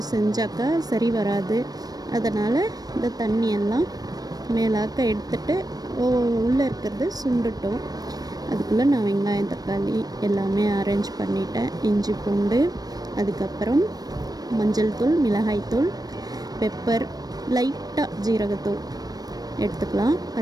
செஞ்சாக்கா சரி வராது. அதனால் இந்த தண்ணியெல்லாம் மேலாக்க எடுத்துட்டு உள்ளே இருக்கிறது சுண்டுட்டோம். அதுக்குள்ளே நான் வெங்காயம், தக்காளி எல்லாமே அரேஞ்ச் பண்ணிட்டேன். இஞ்சி பூண்டு, அதுக்கப்புறம் மஞ்சள் தூள், மிளகாய்த்தூள், பெப்பர், லைட்டாக ஜீரகத்தூள் எடுத்துக்கலாம்.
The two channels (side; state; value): left; late; 0.19 ms